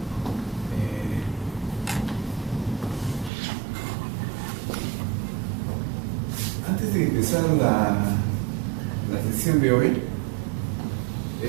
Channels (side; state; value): left; drops out; at 3.3 s